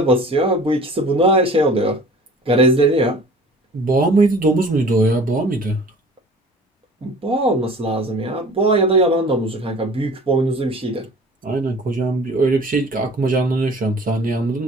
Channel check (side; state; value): both; normal; correlation 0.45